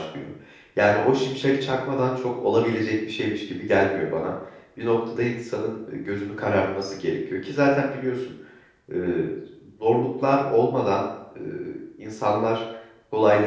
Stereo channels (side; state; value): both; identical; correlation 1.00